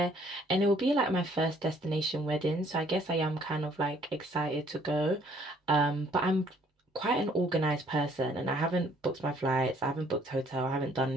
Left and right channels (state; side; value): normal; both; correlation 0.62